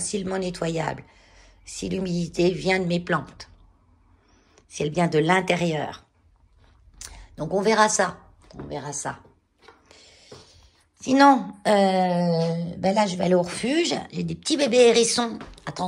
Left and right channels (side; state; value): both; identical; correlation 1.00